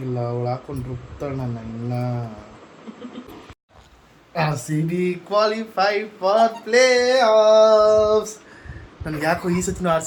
ಅವಳು ಹಾಕೊಂಡು ರುಬ್ತಾಳ ನನ್ನ ಇನ್ನ. RCB qualified for play offs. ನನಗೆ ಯಾಕೋ ಈ ಸತಿನೂ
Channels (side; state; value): both; identical; correlation 1.00